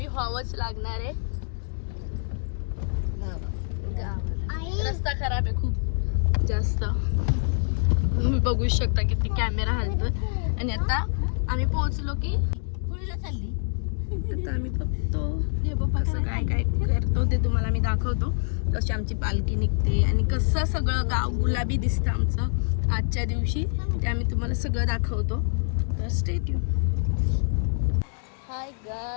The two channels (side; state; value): right; silent; digital silence